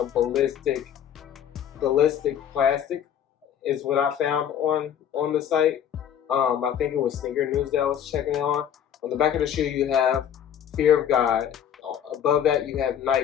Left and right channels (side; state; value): right; quieter; 9.4 dB